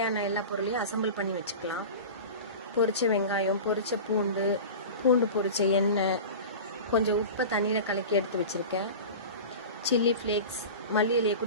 எல்லா பொருளையும் அசம்பிள் பண்ணி வச்சுக்கலாம். பொரிச்ச வெங்காயம், பொரிச்ச பூண்டு பொரிச்ச எண்ணெய், கொஞ்சம் உப்பை தண்ணியில் கலக்கி எடுத்து வச்சுருக்கேன். சில்லி ஃப்ளேக்ஸ், மல்லி இலையை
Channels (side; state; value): both; inverted; correlation -0.32